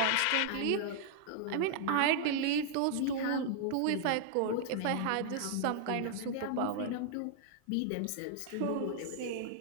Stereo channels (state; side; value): different; both; correlation 0.00